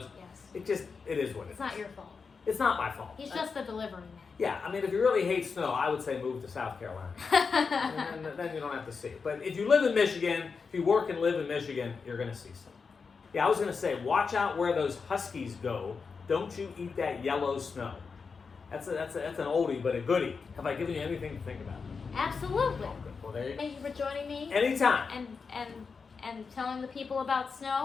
Yes. It is what it is. It's not your fault. It's not my fault. He's just the delivery man. Yeah, I mean, if you really hate snow, I would say move to South Carolina. And then you don't have to see it. But if you live in Michigan, if you work and live in Michigan, you're going to see snow. Yeah, I was going to say, watch out where those huskies go. Don't you eat that yellow snow. That's an oldie, but a goodie. Have I given you anything to think about? Absolutely. Oh, good. Well, there you go. Thank you for joining me. Anytime. And telling the people about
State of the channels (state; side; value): quieter; right; 5.2 dB